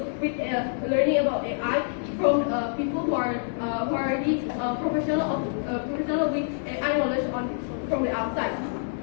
with learning about AI from people who are already professional with AI knowledge from the outside.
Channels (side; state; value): right; silent; digital silence